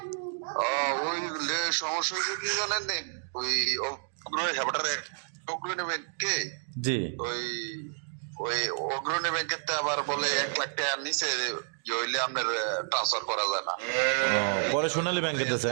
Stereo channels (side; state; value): left; silent; digital silence